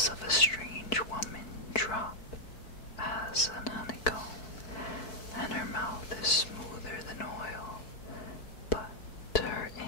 of a strange woman drop as an honeycomb, and her mouth is smoother than oil, but her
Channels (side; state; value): right; late; 4.6 ms